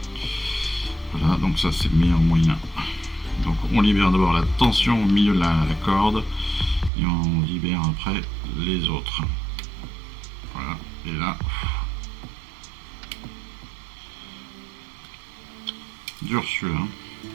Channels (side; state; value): left; drops out; at 6.9 s